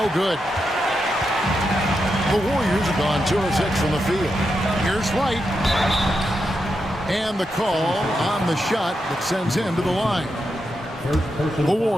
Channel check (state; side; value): normal; both; correlation 0.86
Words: good. The Warriors have gone 2 of 6 from the field. Here's Wright. And the call on the shot that sends him to the line. The